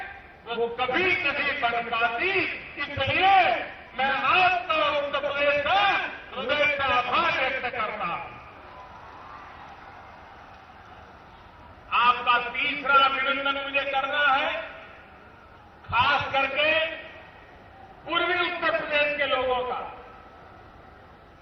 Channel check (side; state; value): both; identical; correlation 1.00